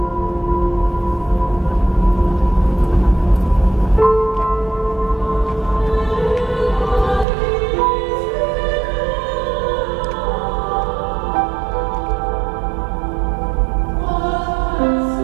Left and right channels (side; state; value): left; drops out; at 7.2 s